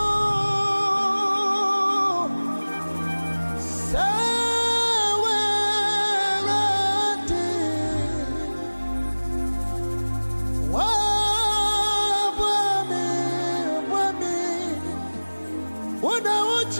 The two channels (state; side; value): inverted; both; correlation -1.00